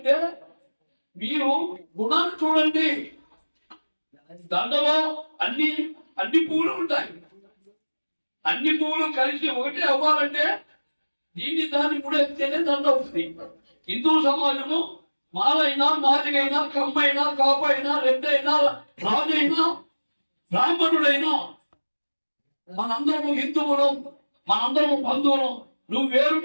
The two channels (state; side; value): inverted; both; correlation -1.00